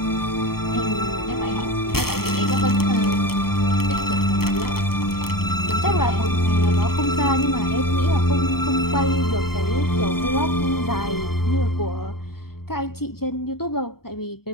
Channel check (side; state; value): right; late; 0.94 ms